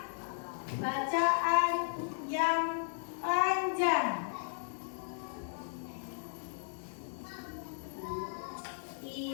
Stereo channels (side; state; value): right; silent; digital silence